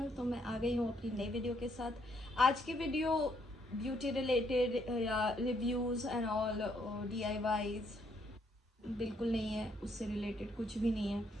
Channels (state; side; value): normal; both; correlation 0.72